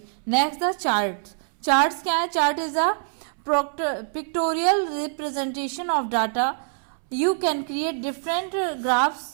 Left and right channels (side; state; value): left; silent; 62 dB below the other